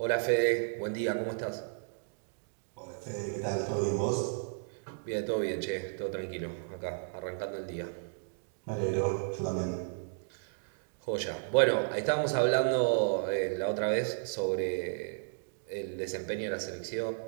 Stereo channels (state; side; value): silent; left; digital silence